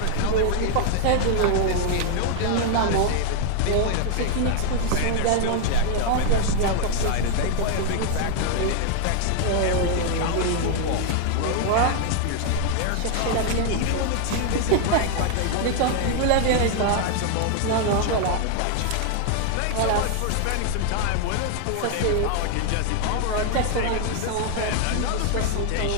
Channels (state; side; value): different; both; correlation 0.00